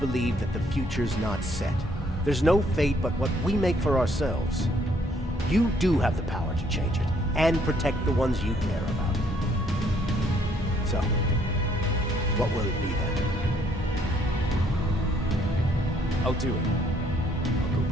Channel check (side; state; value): both; normal; correlation 0.67